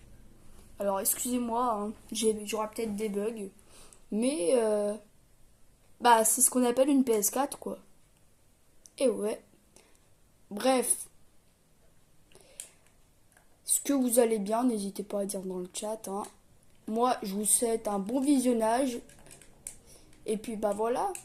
Alors excusez-moi, hein, j'aurai peut-être des bugs. Mais c'est ce qu'on appelle une PS4 quoi. Et ouais. Bref, est-ce que vous allez bien? N'hésitez pas à dire dans le chat. Hein. Moi, je vous souhaite un bon visionnage. Et puis, voilà.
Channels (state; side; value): identical; both; correlation 1.00